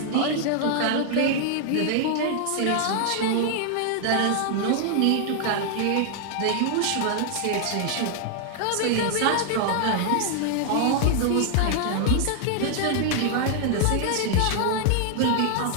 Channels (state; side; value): different; both; correlation 0.00